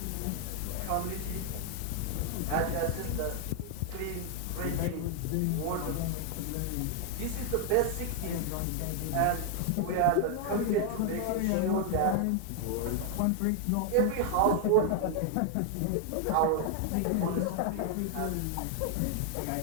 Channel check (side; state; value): both; different; correlation 0.00